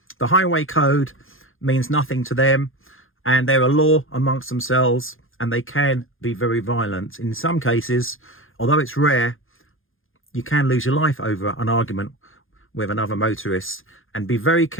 The highway code means nothing to them, and they're a law amongst themselves, and they can be very violent. In some cases, although it's rare, you can lose your life over an argument with another motorist. And be very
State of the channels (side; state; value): right; late; 0.59 ms